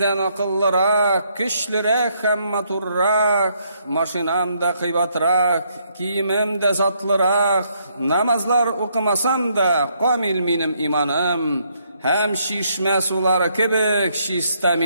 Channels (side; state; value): both; inverted; correlation -0.72